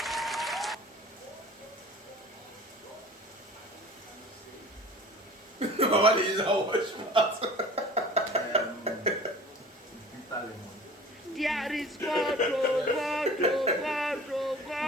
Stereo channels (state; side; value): normal; both; correlation 0.43